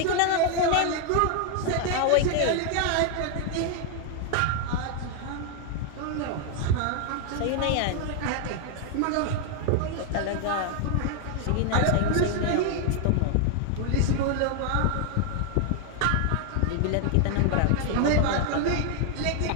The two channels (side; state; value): both; different; correlation 0.00